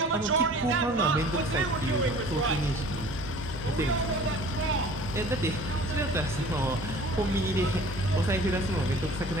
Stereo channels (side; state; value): both; normal; correlation 0.46